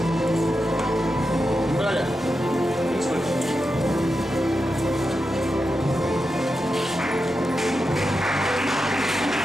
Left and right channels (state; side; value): normal; both; correlation 0.88